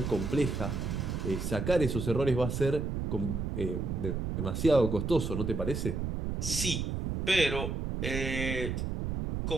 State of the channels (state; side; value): noise; right; rumble, 2 dB below the sound